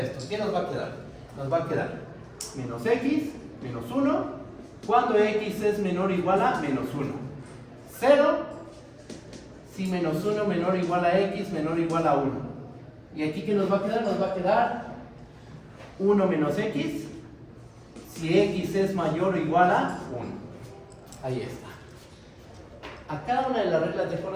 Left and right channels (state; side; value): identical; both; correlation 1.00